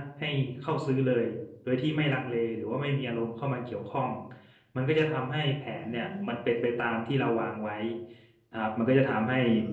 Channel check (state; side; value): identical; both; correlation 1.00